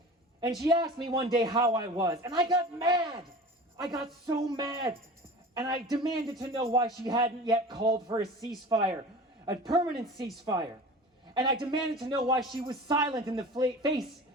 And she asked me one day how I was, and I got mad. I got so mad. And I demanded to know why she hadn't yet called for a ceasefire, a permanent ceasefire. And I demanded to know why she was silent in the face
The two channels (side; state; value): both; normal; correlation 0.37